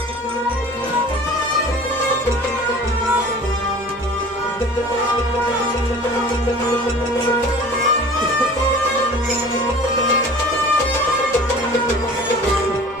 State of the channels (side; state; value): both; normal; correlation 0.43